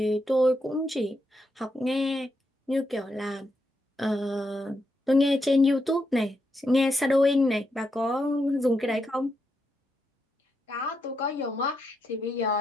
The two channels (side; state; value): both; normal; correlation 0.82